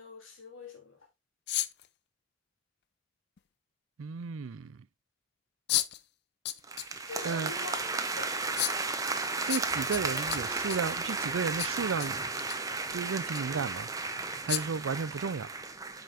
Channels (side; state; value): both; normal; correlation -0.04